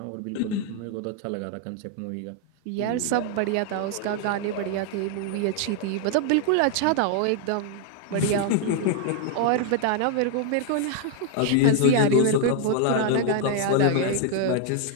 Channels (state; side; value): different; both; correlation 0.00